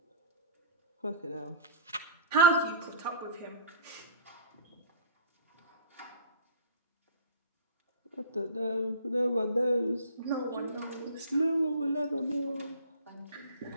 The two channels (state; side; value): inverted; both; correlation -0.39